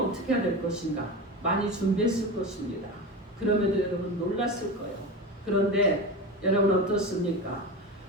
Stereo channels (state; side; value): normal; both; correlation 0.25